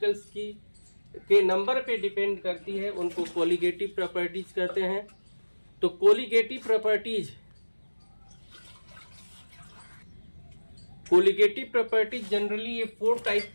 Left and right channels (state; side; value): inverted; both; correlation -1.00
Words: की के नंबर पे डिपेंड करती है, उनको कोलिगेटिव प्रॉपर्टीज कहते हैं। तो कोलिगेटिव प्रॉपर्टीज जनरली ये 4 टाइप